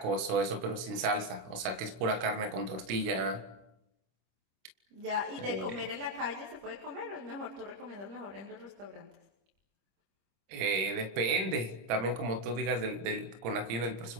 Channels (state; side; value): late; left; 26 ms